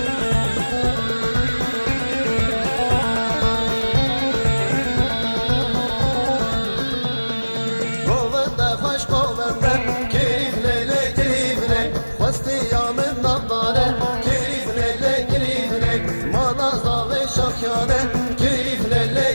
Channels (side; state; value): both; inverted; correlation -1.00